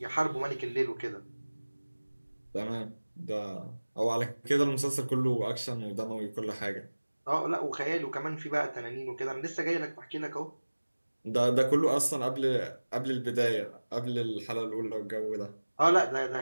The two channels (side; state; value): both; inverted; correlation -1.00